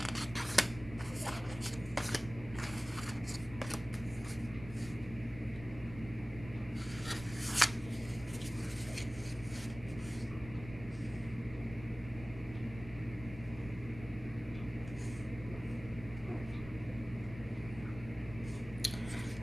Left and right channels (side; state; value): right; noise; rumble, 13 dB below the sound